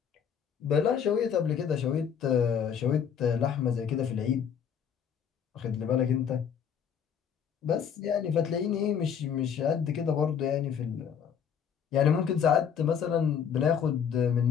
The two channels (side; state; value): right; quieter; 7.8 dB